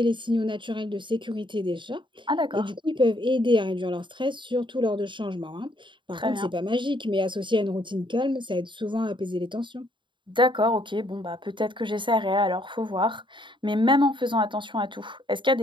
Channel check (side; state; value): left; late; 0.23 ms